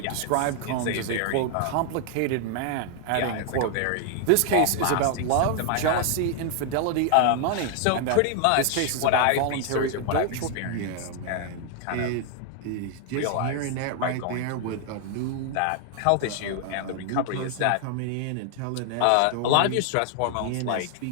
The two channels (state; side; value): different; both; correlation 0.00